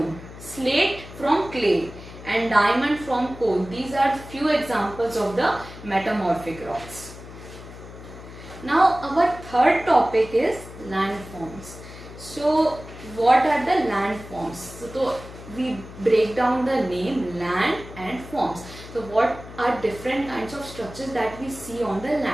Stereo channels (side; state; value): left; noise; hum, 15 dB below the sound